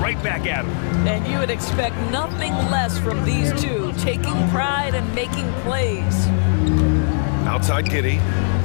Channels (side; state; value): right; silent; digital silence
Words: right back at him. And you would expect nothing less from these two, taking pride and making plays. Outside Giddey.